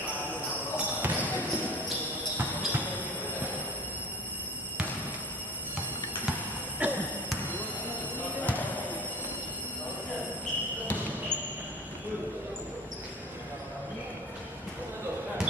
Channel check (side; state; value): both; normal; correlation 0.37